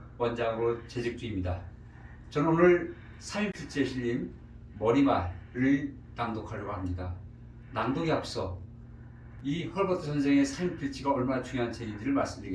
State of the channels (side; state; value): both; identical; correlation 1.00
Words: 원장으로 재직 중입니다. 저는 오늘 삼인필지에 실린 머리말을 낭독하려고 합니다. 낭독에 앞서 이 헐버트 선생의 삼인필지가 얼마나 중요한 책인지를